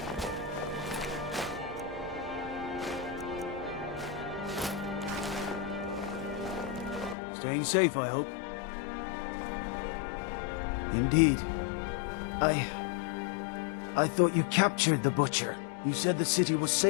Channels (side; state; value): right; drops out; at 7.2 s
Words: Staying safe, I hope. Indeed. I thought you captured the Butcher. You said the city was